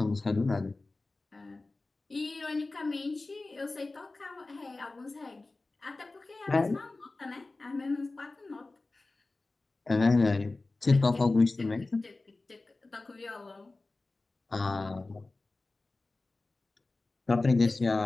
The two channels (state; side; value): quieter; right; 3.3 dB